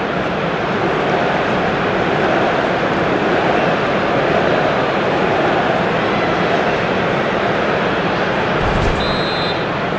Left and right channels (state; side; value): identical; both; correlation 1.00